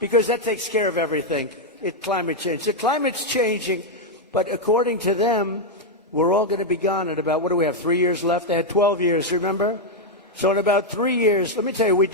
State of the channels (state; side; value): normal; both; correlation 0.00